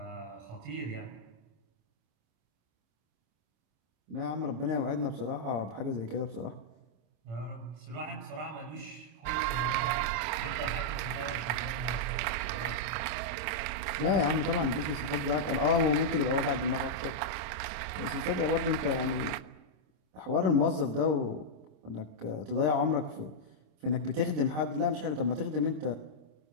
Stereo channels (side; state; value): left; late; 26 ms